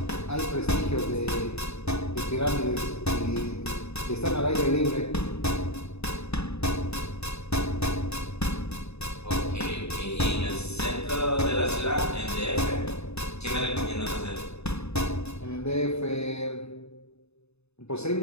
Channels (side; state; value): right; late; 0.80 ms